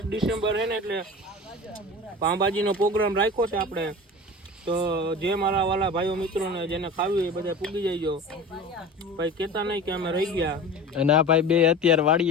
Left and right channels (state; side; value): normal; both; correlation 0.34